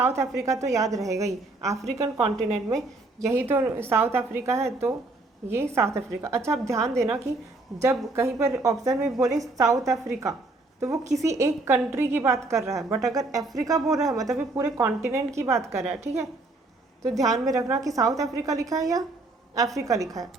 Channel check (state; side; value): quieter; left; 3.1 dB